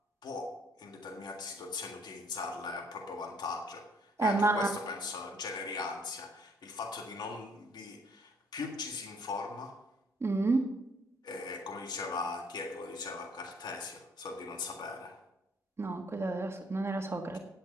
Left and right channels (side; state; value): both; normal; correlation 0.63